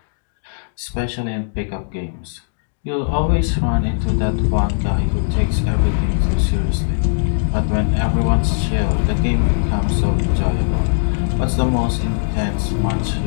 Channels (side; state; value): right; silent; digital silence